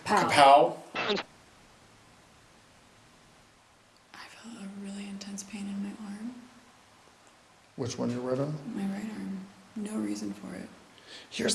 Kapow? I felt a really intense pain in my arm. Which one, your right arm? My right arm. No reason for it. Here's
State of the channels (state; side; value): identical; both; correlation 1.00